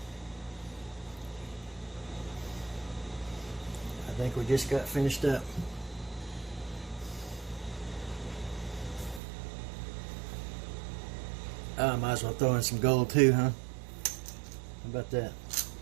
I think we just got finished up. I might as well throw in some gold too, huh? How about that?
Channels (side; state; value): left; drops out; at 9.2 s